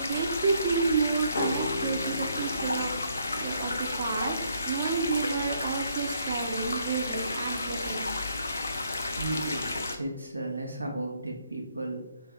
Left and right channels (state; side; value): inverted; both; correlation -0.70